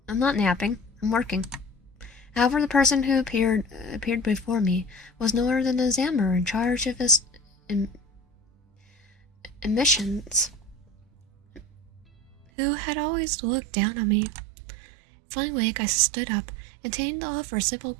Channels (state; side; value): drops out; left; at 12.5 s